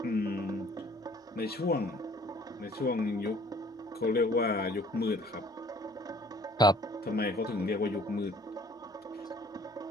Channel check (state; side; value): normal; both; correlation 0.55